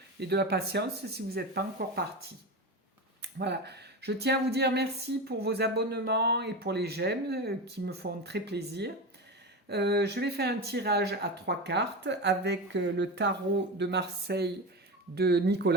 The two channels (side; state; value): both; normal; correlation 0.22